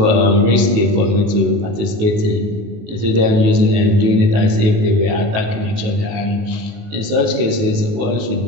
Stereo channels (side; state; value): left; late; 19 ms